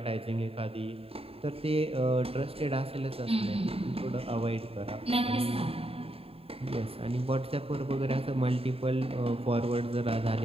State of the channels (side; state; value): left; late; 0.28 ms